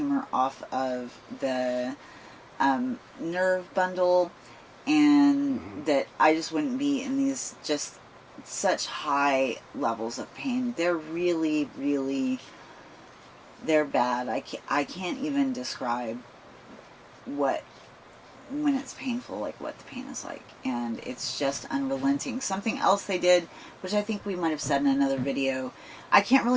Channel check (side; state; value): both; identical; correlation 1.00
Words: off of the nerve bundle, and that I just wouldn't be in these just such high levels of pain. They're really, really. They're bad. I can't even describe when it's painful, like what the pain is like. And it's just unrelenting. Something else they did, which I think we might have said in another video, I can't